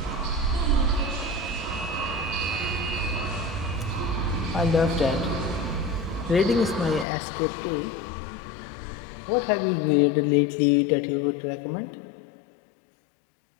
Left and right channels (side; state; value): right; drops out; at 7.1 s